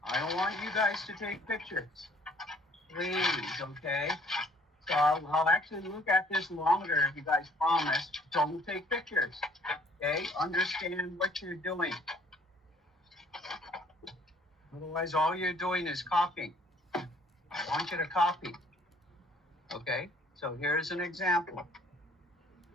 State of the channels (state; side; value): normal; both; correlation 0.59